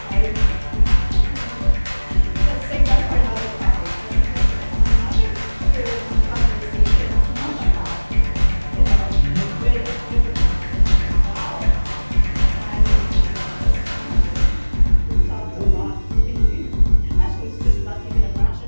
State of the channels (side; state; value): both; inverted; correlation -1.00